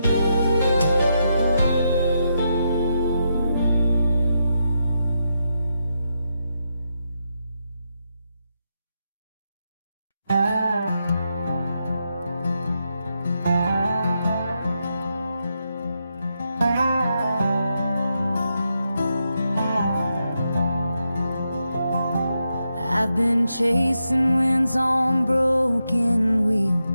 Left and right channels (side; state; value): both; inverted; correlation -0.84